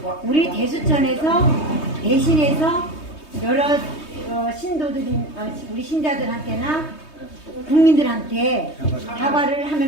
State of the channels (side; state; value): right; late; 3.2 ms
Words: 우리 대수천에서 대신해서 여러 신도들이 우리 신자들한테나 국민들한테 사과를